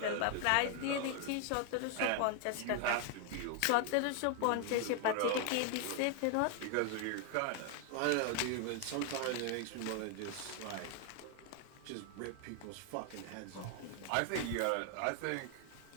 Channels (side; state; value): both; different; correlation 0.00